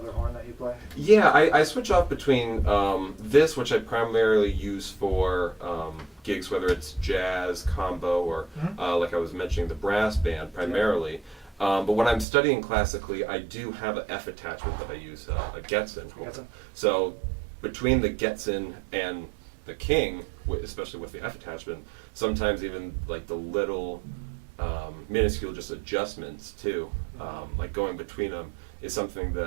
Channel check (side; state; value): left; drops out; at 12.2 s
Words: horn that you play? Yeah, I switch off between this, which I primarily use for gigs, whether it's jazz, combo, or like I was mentioning, the brass band primarily. But when I'm studying classically, I do have an F attachment that I use, a Getzen. So between the Getzen and the King, especially with the F attachment, sometimes even like the little minuscule just adjustments too, like going between them, is something